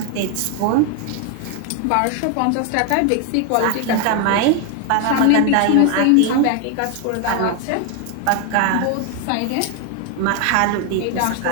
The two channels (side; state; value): both; different; correlation 0.01